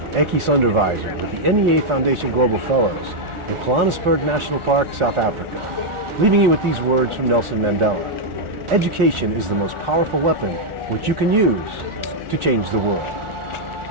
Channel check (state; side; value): late; left; 1.4 ms